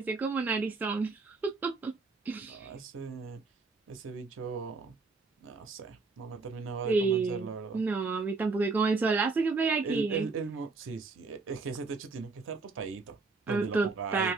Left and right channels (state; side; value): quieter; left; 4.0 dB